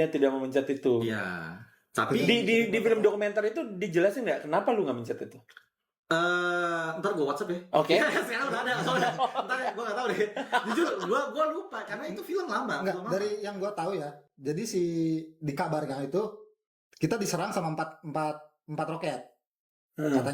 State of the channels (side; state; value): both; identical; correlation 1.00